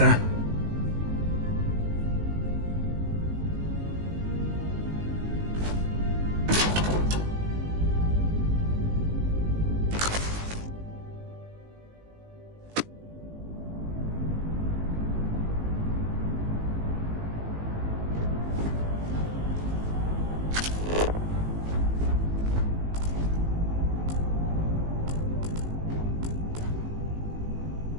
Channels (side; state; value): left; late; 19 ms